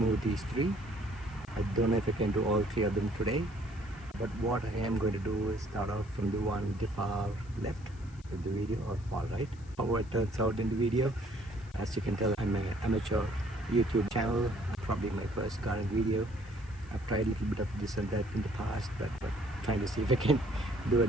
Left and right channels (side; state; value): left; noise; hiss, 27 dB below the sound